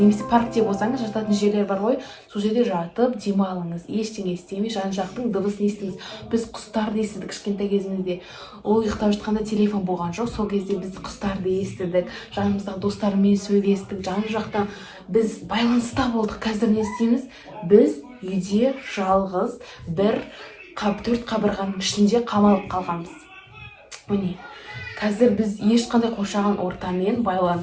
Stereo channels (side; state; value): both; identical; correlation 1.00